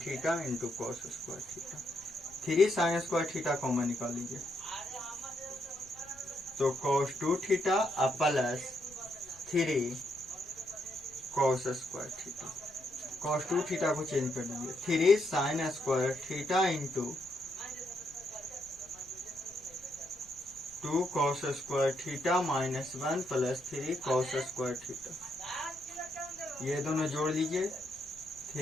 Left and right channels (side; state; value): left; noise; rumble, 26 dB below the sound